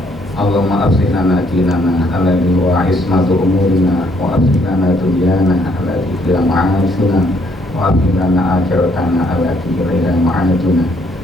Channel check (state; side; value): normal; both; correlation 0.68